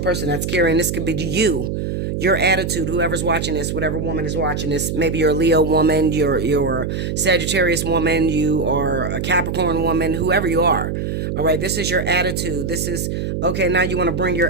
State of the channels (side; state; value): right; noise; hum, 3 dB below the sound